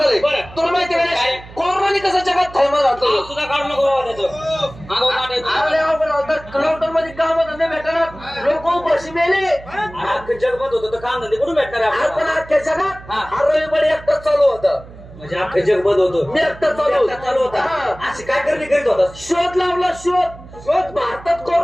झालंय तुला माहिती गणेश कोरोनाने कसं जगात थैमान घातलं सुद्धा काढू नको बाबा त्याचं लॉकडाऊन मध्ये काम धंदे भेटणार लोक मावशी मेले अख्खं जग बंद होतं तर काम धंदे कुठून भेटणार आहे आपण आपल्याला? अख्ख्या जगात हा. हा रविवारी एकटाच चालू होता म्हणजे अख्खं जग बंद होतं मी एकटा चालू एकटा चालू होता हा. अशी काय करणी करीत होता? शोध लावला शोध भारतात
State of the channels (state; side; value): noise; right; hum, 18 dB below the sound